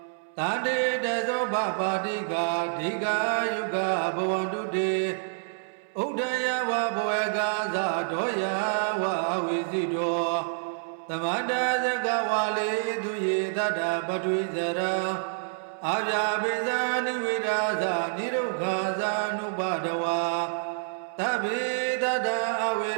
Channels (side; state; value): left; silent; 60 dB below the other